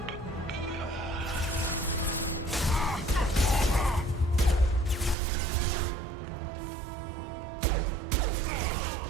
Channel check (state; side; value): drops out; left; at 5.2 s